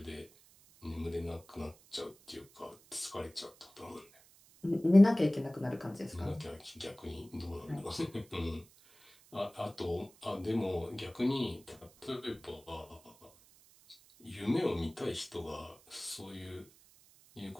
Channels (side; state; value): right; noise; hiss, 26 dB below the sound